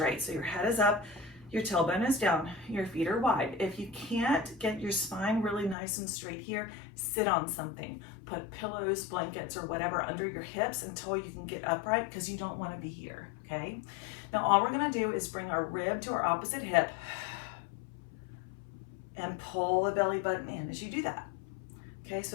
So your head is up, your tailbone is down, your feet are wide. If you can't get your spine really nice and straight here, sit on something. Put pillows, blankets, or whatever under your hips until you can get upright, because you don't want to be here, okay? Now all we're gonna do is bring our rib to our opposite hip and pull the belly button in as you do that. Okay, so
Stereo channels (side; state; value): right; drops out; at 5.8 s